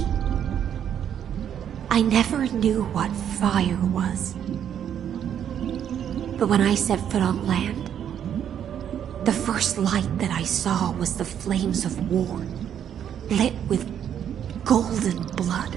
I never knew what fire was. But when I set foot on land, the first light that I saw was the flames of war, lit with golden blood.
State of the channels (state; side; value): quieter; left; 9.3 dB